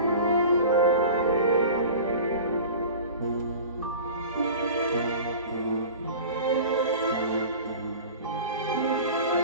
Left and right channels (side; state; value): both; inverted; correlation -0.38